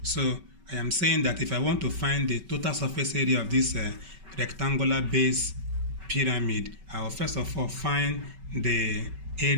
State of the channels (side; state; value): left; late; 5.2 ms